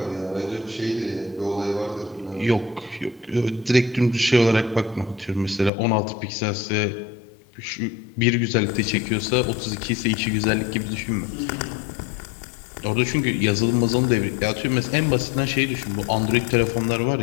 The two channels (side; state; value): right; drops out; at 5.7 s